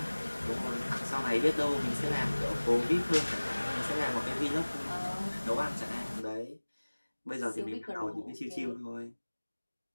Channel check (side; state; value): both; inverted; correlation -1.00